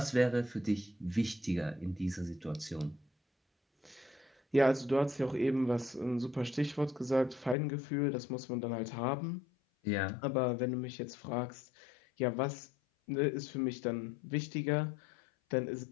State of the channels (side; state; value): right; drops out; at 7.6 s